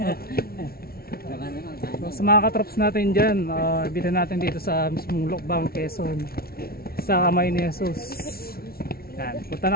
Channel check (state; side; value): late; right; 0.44 ms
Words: Baka naman. So, sa mga katrops natin dyan, bitan natin dito sa mismong Lokbang, Quezon, sa kamay ni Jesus. Yan. Punta